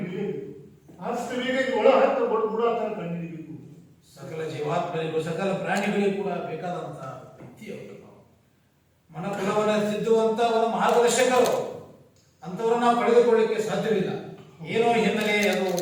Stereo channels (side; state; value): both; identical; correlation 1.00